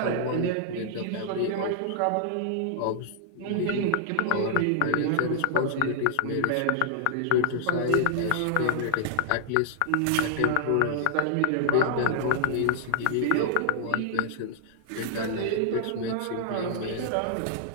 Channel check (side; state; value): both; different; correlation -0.01